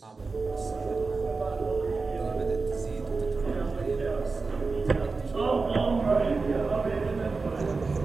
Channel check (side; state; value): left; quieter; 4.1 dB